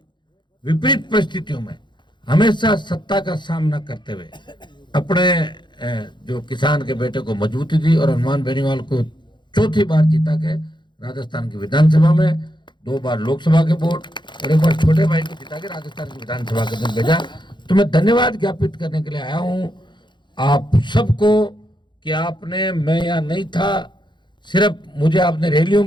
विपरीत परिस्थितियों में हमेशा सत्ता का सामना करते हुए अपने जो किसान के बेटे को मजबूती दी और हनुमान बेनीवाल को चौथी बार जीता के राजस्थान की विधानसभा में, 2 बार लोकसभा के वोट और 1 बार छोटे भाई को जिता के राजस्थान की विधानसभा के दिन भेजा। तो मैं धन्यवाद ज्ञापित करने के लिए आया हूं आप सबको कि आपने, मैं यहाँ नहीं था, सिर्फ मुझे आपने रैलियों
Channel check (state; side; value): late; right; 0.22 ms